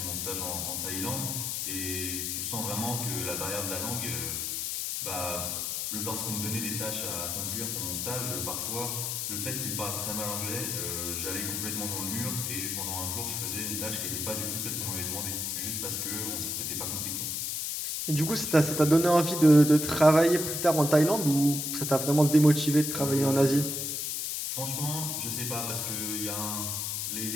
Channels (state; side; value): noise; left; hiss, 2 dB below the sound